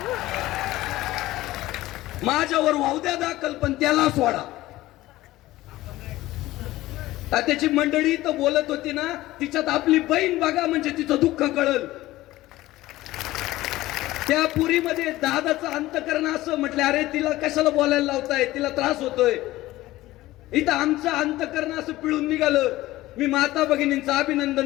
माझ्यावर वाहू द्या दाखल पण त्याला सोडा. त्याची मंडळी तर बोलत होती ना, तिच्यात आपली बहीण बघा म्हणजे तिचं दुःख कळल. त्या पुरीमध्ये दादाचं अंतकरण असं म्हटलं, अरे तिला कशाला बोलायला लावताय, तिला त्रास होतोय. इथं आमचं अंतकरण असं पिळून निघालं. मी माता भगिनींचं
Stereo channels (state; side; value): quieter; right; 16.9 dB